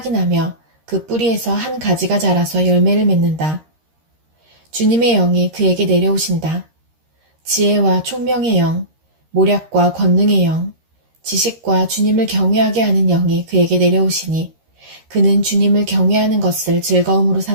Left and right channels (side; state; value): left; late; 13 ms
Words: 나며 그 뿌리에서 한 가지가 자라서 열매를 맺는다. 주님의 영이 그에게 내려오신다. 지혜와 총명의 영, 모략과 권능의 영, 지식과 주님을 경외하게 하는 영이 그에게 내려오시니 그는 주님을 경외하는 것을 즐거움으로